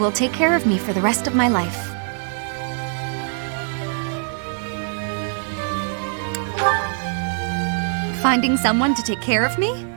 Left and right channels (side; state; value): left; silent; digital silence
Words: take care of me for the rest of my life. Finding someone to take care of me?